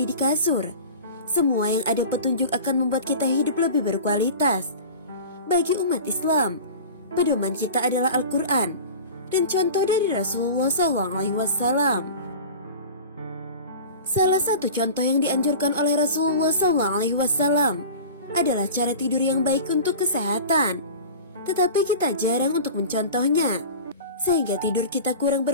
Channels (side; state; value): both; inverted; correlation -0.35